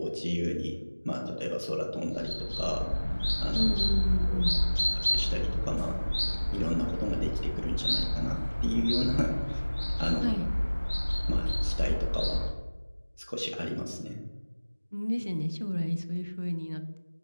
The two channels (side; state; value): both; inverted; correlation -1.00